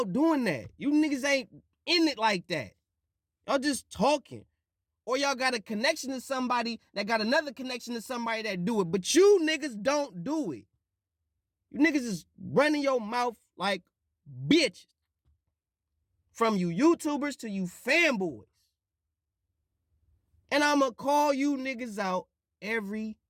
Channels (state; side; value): identical; both; correlation 1.00